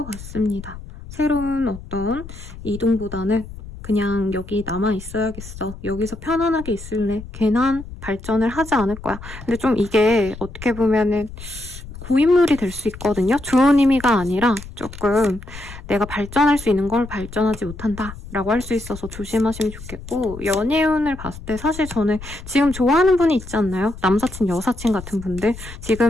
같습니다. 새로운 어떤 이동보다는 그냥 여기 남아 있어야겠어. 여기서 편안하게 있을래. 괜한 발전을 하지 않을 거야. 근데 좀 이게 어떻게 보면은 고인물이 될 수 있거든요. 좋은 의미가 아니라 조금 내가 발전할 수 있는 걸 발전하지 못한다 라고 할 수 있어서 조심하시면 좋겠고, 연애운을 봤을 때 사실 저는 지금 좋아하는 분이 있지 않나요? 남사친, 여사친 같은 분들,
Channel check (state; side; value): noise; left; rumble, 14 dB below the sound